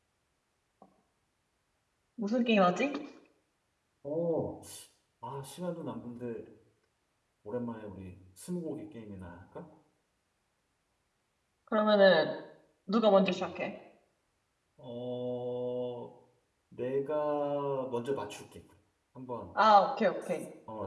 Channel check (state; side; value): identical; both; correlation 1.00